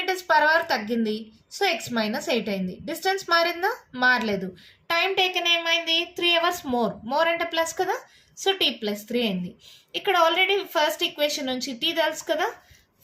per hour తగ్గింది. సో x మైనస్ 8 అయింది. డిస్టెన్స్ మారిందా, మారలేదు. టైం టేకెన్ ఏమైంది, 3 hours మోర్ అంటే ప్లస్ కదా. సో t ప్లస్ 3 అయింది. ఇక్కడ ఆల్రెడీ ఫస్ట్ ఈక్వేషన్ నుంచి t తెలుసు కదా,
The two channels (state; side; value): identical; both; correlation 1.00